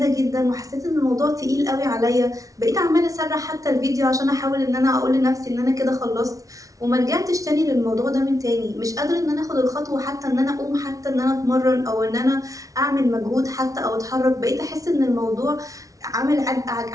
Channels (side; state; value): left; late; 0.17 ms